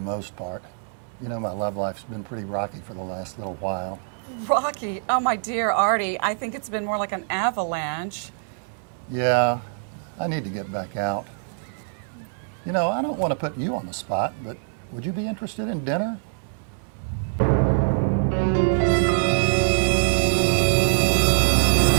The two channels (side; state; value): left; silent; digital silence